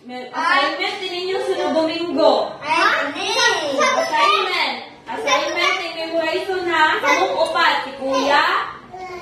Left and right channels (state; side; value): identical; both; correlation 1.00